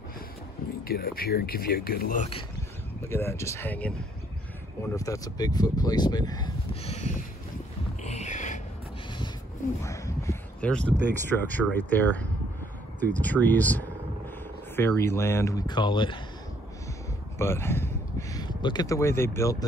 Let me get up here and give you a good look. Look at that, just hanging. I wonder if that's a Bigfoot placement. There's the big structure right there through the trees. Fairyland, we call it. But look at the way they built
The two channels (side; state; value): both; normal; correlation 0.66